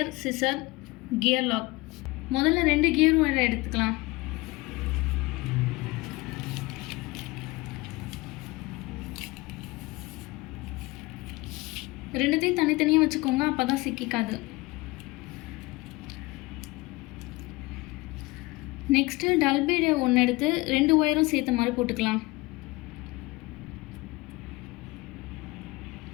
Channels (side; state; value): right; quieter; 22.4 dB